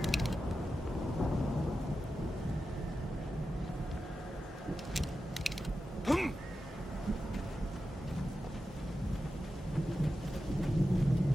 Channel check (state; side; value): normal; both; correlation 0.91